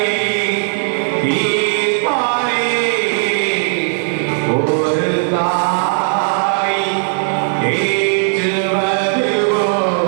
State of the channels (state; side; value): silent; left; digital silence